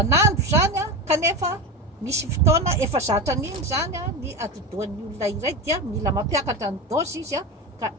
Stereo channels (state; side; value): normal; both; correlation 0.21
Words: zany kanefa misy fotoana efa zatra an'iny zany ny atidohan'ny olona iray dia mila mampiakatra ny dôzy izy ka